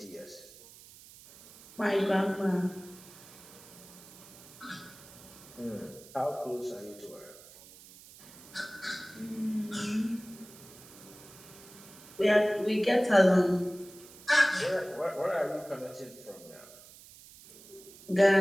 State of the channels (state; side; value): noise; right; hiss, 20 dB below the sound